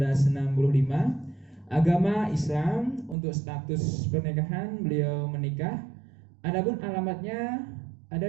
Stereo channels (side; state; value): left; drops out; at 3.2 s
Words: Agama Islam. Untuk status pernikahan beliau menikah. Adapun alamatnya